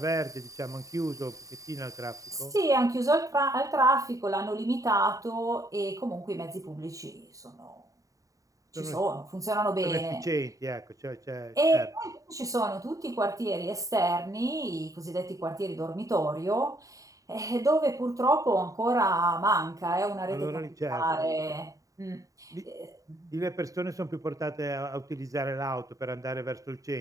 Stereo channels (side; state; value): left; late; 0.16 ms